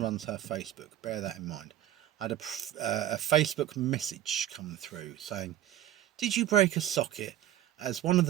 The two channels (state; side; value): quieter; left; 12.3 dB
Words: her Facebook. Bear that in mind. I had a Facebook message come through saying, did you break a socket? As one of